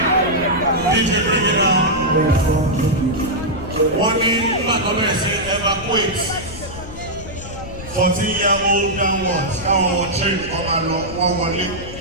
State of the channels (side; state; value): left; noise; rumble, 12 dB below the sound